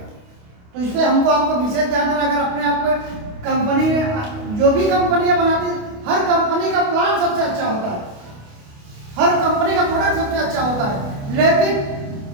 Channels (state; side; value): late; left; 28 ms